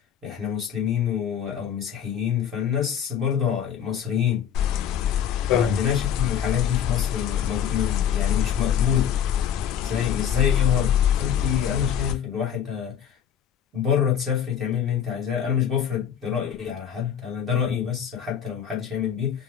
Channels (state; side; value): quieter; right; 8.8 dB